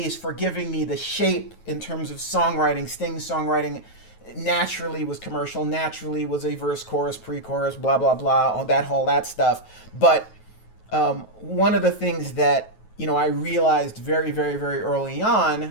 for giving me the shape in terms of songwriting. Sting's songwriting naturally was commercial, naturally was a verse, chorus, pre-chorus, blah, blah, blah, all that stuff. But one of the things that, I realized very, very, very early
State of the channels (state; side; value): late; right; 9.3 ms